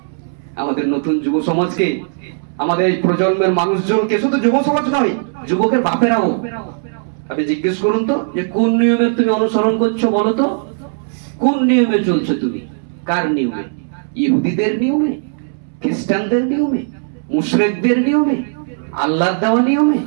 আমাদের নতুন যুব সমাজকে, আমাদের এই প্রজন্মের মানুষজনকে, শুধু যুব সমাজ নয়, যুবকের বাপেরাও, আপনি জিজ্ঞেস করুন তো যে কোন নিয়মে তুমি অনুসরণ করছো, বলো তো কোন নিয়মে চলছো তুমি, কার নিয়মে? ইহুদিদের নিয়মে, খ্রিস্টানদের নিয়মে, মুশরিকদের নিয়মে, আল্লাহর দেওয়া নিয়মে?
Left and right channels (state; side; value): silent; left; 67 dB below the other